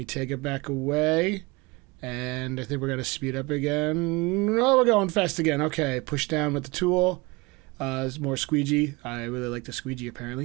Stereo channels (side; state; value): left; quieter; 24.9 dB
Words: take it back away, and I think we're going to speed up again. Oh, we're going fast again. Okay, push down with the tool. There's more squeegee. I really like the squeegee,